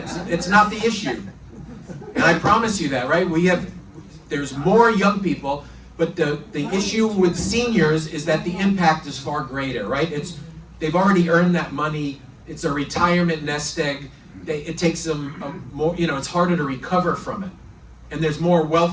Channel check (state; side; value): identical; both; correlation 1.00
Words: it's not the issue. And I promise you that, right? There's more young people, but the issue with seniors is that the impact is far greater, right? They've already earned that money. It's a retirement nest egg. It takes them more, it's harder to recover from it. And there's more